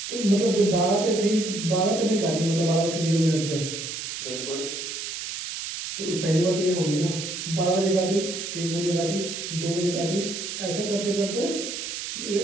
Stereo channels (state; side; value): noise; right; hiss, 6 dB below the sound